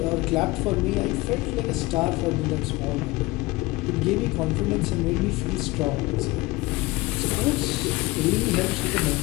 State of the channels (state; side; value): quieter; right; 21.2 dB